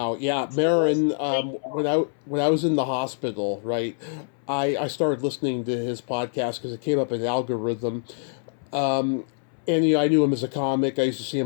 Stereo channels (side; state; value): right; silent; 62 dB below the other